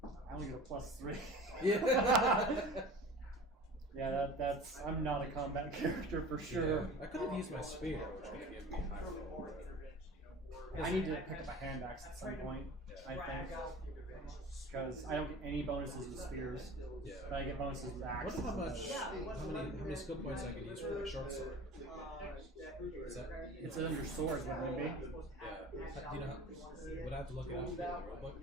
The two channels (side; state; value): both; normal; correlation 0.40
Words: I only get a +3. Yeah. Yeah, that's. I'm not a combat character for sure. Yeah. I could have used my spear, which would have given me higher roll. I need to pick up a hand axe at some point, I think. Because I don't get any bonuses with spears, Yeah. but I get bonuses with axes. Wonder how many skill points I could use for my short sword. Is that, It's under swords, wouldn't it be? yeah. Do you know how, would I have to look it up in the